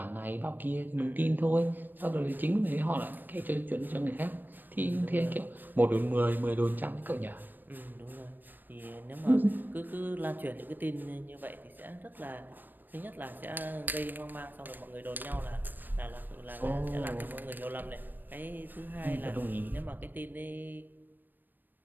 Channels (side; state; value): left; late; 0.091 ms